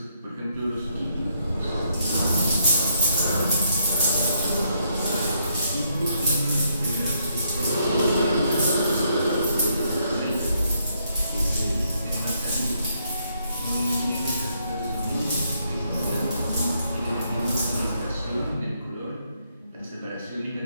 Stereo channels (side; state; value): both; inverted; correlation -0.73